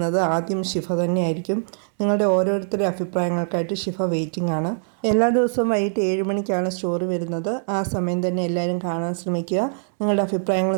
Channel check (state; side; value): silent; left; 64 dB below the other